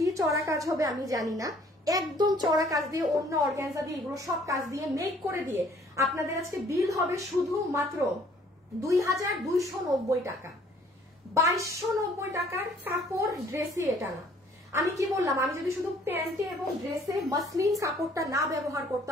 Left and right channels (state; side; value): normal; both; correlation 0.59